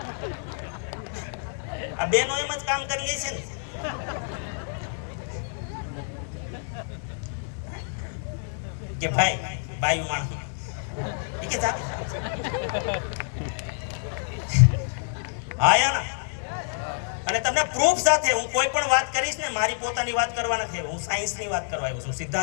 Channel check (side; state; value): right; silent; 60 dB below the other